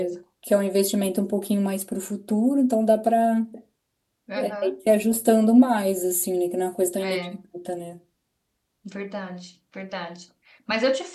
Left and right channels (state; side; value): identical; both; correlation 1.00